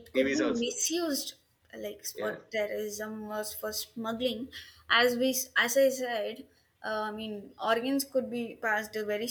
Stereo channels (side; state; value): both; identical; correlation 1.00